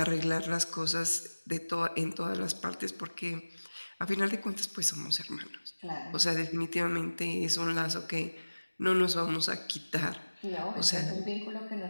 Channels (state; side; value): inverted; both; correlation -1.00